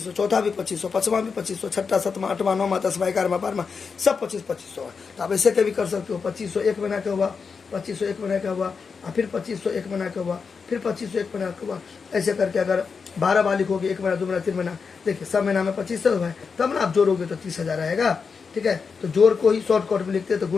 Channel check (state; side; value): quieter; right; 5.4 dB